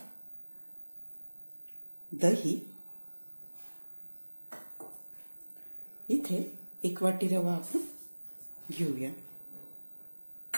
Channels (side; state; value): both; inverted; correlation -1.00